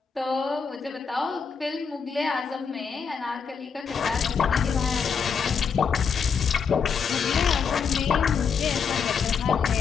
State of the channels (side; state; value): right; quieter; 6.1 dB